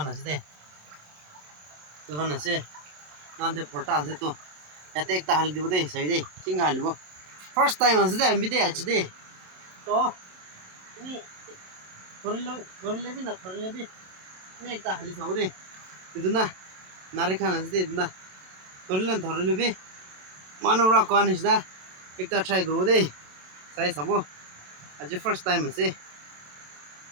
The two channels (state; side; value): late; left; 27 ms